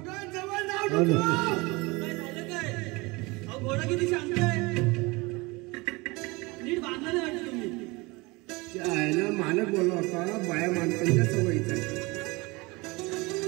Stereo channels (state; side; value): quieter; left; 24.5 dB